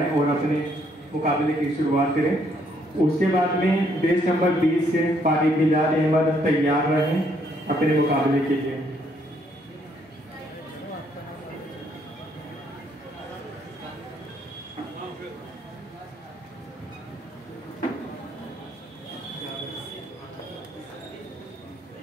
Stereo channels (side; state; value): both; normal; correlation 0.69